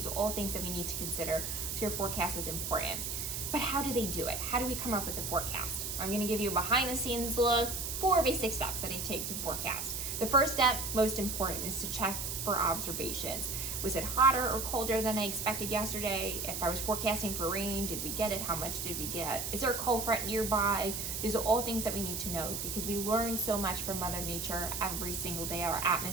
are all things that we need to consider. So your forecast is important. But how do they do it? How do we come up with the forecast? I'm going to give you a behind the scenes look. 4 basic steps that I take to forecast. The first step, most important, is to check for observations. Was it hotter or colder than I expected yesterday? If I was forecasting for rain, did we get it? How much did we get? Is there a cold front nearby? These are all things that we need to know because we learn so much from Mother Nature every single day. Our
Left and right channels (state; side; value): noise; right; hiss, 3 dB below the sound